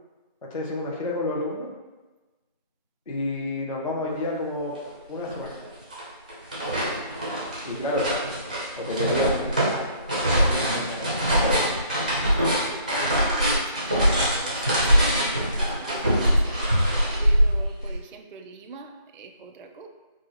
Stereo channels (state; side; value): inverted; both; correlation -0.61